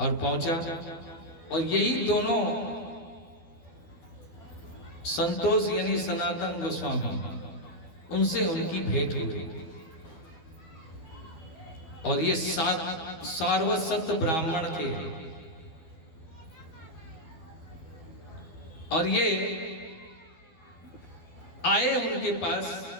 पहुंचा, और यही दोनों संतोष यानी सनातन गोस्वामी, उनसे उनकी भेंट हो गई। और ये सारवत ब्राह्मण थे। और ये आए उनके पास,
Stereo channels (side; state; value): right; late; 12 ms